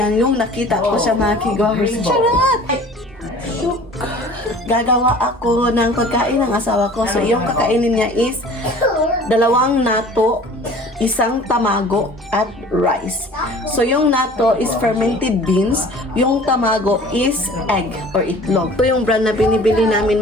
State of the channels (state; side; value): normal; both; correlation 0.46